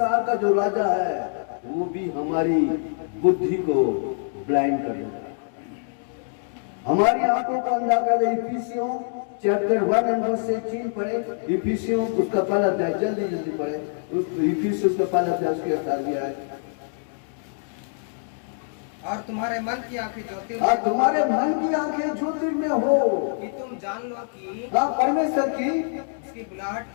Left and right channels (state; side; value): silent; right; digital silence